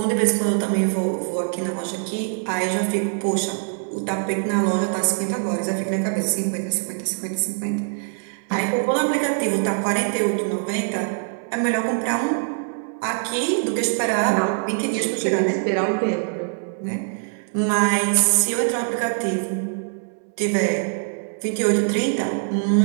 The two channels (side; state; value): left; silent; digital silence